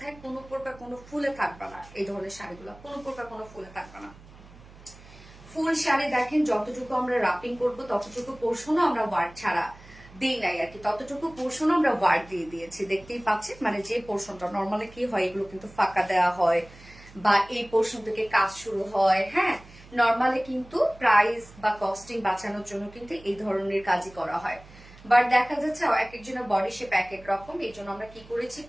কোনো প্রকার কোনো ফুলে থাকবে না। এই ধরনের শাড়িগুলো কোনো প্রকার কোনো ফুলে থাকবে না। ফুল শাড়ি দেখেন, যতটুকু আমরা রাপিং করবো ততটুকু পোর্শনও আমরা ওয়ার্ক ছাড়া দিই নাই আর কি, ততটুকু পোর্শনও আমরা ওয়ার্ক দিয়ে দিয়েছি। দেখতেই পাচ্ছেন, মানে যে পোর্শনটা নর্মালি কি হয়, এগুলো কিন্তু ফাঁকা দেওয়া হয়, বা এই পোর্শন থেকে কাজ শুরু হয়, হ্যাঁ নর্মালি কিন্তু প্রাইস বা কস্টিং বাঁচানোর জন্য কিন্তু এই ধরনের কাজই করা হয়। বাট দেখা যাচ্ছে এক একজনের বডি শেপ এক এক রকম, এই জন্য আমরা কি করেছি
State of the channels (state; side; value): noise; right; hum, 21 dB below the sound